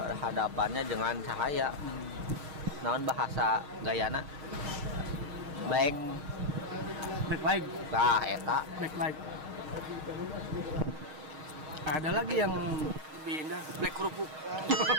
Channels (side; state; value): left; late; 6.5 ms